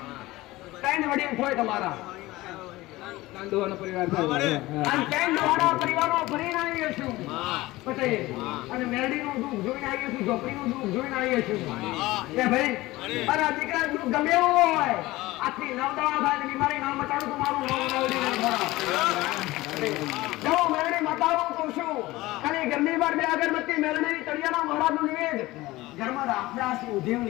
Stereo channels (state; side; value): quieter; right; 18.9 dB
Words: ત્રણ વડીલ હોય તમારા કાંદોવાનો પરિવાર થાય. અને ત્રણ દાડા પરિવારો ભરીને આવીએ છું પટેલ, અને મેરડીનું દુઃખ જોઈને આવીએ છું, ઝોપડીનું દુઃખ જોઈને આવીએ છું. એ ભાઈ અને આ દીકરા દુઃખ ગમે એવું હોય, આખી નવદવા થાય બીમારી ના મટાડું તો મારું નામ મેરડી નહીં ખરા. જો મેરડી મટાડું તો શું, ખાલી ઘરની બહાર બે અગરબત્તી મેરડી તળિયાના મહારાજનું નિવેદ. ઘરમાં રામદાસી ઉધેવ